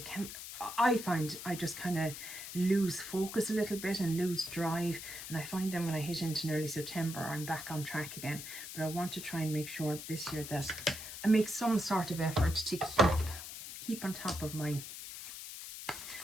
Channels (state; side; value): noise; left; hiss, 10 dB below the sound